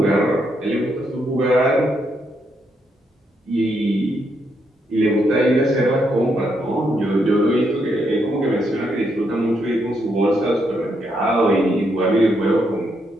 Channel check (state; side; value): normal; both; correlation 0.78